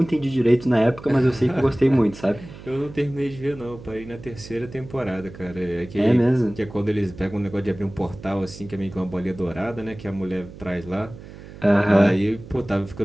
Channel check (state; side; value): noise; right; hum, 16 dB below the sound